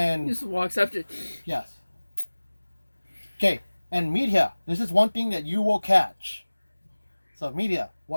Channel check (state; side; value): inverted; both; correlation -1.00